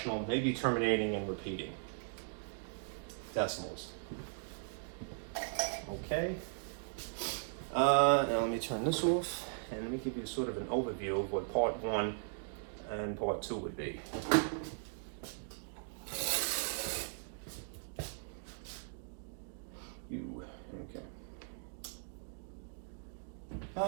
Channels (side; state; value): left; silent; digital silence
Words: maybe terminating and repeating. Decimals. Okay. Now let me turn this off, and let me give you sort of an overview of what part 1 and part 2 would be. Okay.